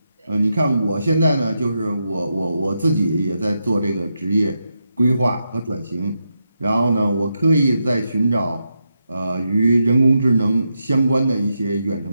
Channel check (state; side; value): inverted; both; correlation -0.85